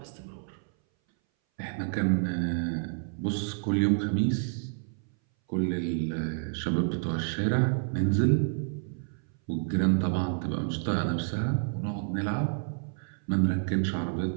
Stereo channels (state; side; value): silent; left; 58 dB below the other